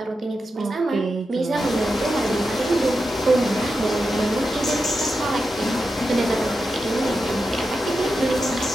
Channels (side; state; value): both; normal; correlation 0.89